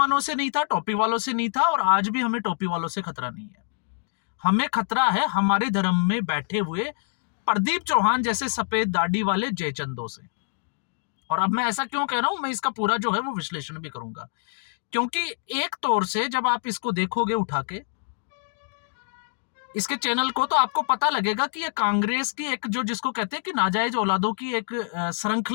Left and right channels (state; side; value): silent; right; digital silence